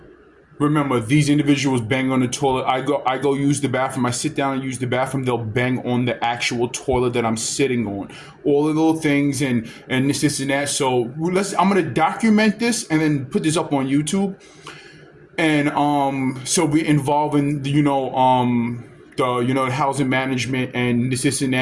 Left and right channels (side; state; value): both; identical; correlation 1.00